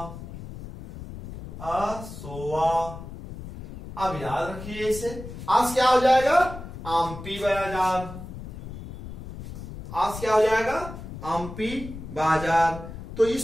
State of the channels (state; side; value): noise; left; rumble, 11 dB below the sound